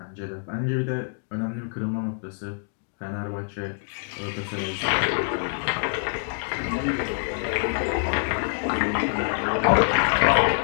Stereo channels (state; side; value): silent; right; digital silence